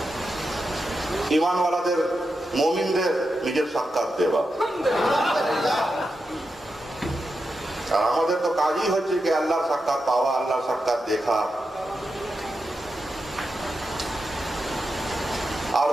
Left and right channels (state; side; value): normal; both; correlation 0.88